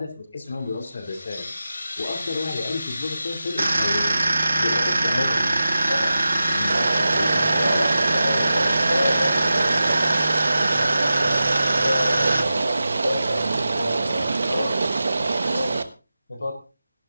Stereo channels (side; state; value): both; inverted; correlation -0.93